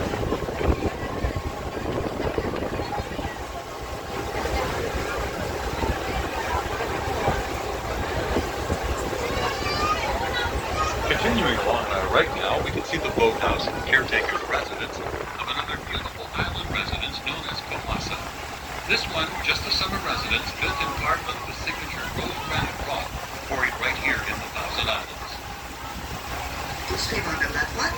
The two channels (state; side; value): identical; both; correlation 1.00